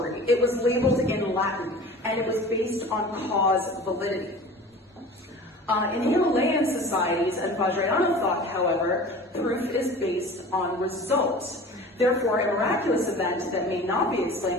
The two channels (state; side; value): normal; both; correlation 0.40